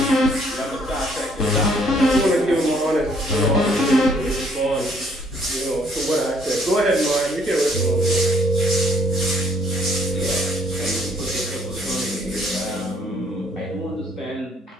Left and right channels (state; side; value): normal; both; correlation 0.64